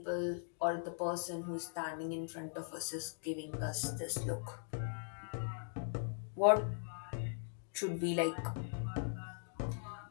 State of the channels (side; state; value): right; silent; digital silence